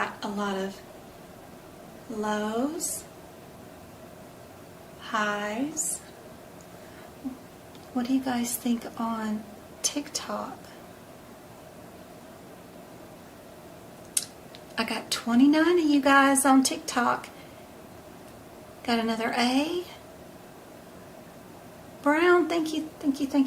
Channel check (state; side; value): identical; both; correlation 1.00